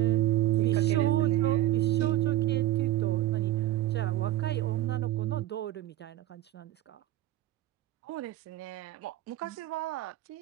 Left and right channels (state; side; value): quieter; left; 14.9 dB